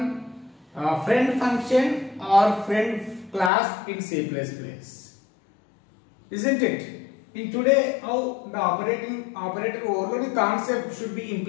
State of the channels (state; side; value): drops out; right; at 3.5 s